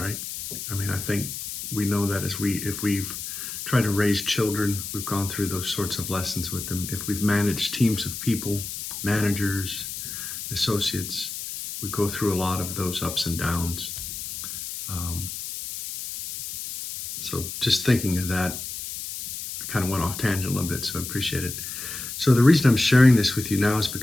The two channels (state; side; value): noise; left; hiss, 7 dB below the sound